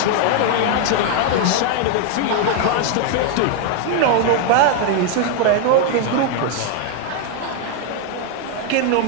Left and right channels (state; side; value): different; both; correlation 0.01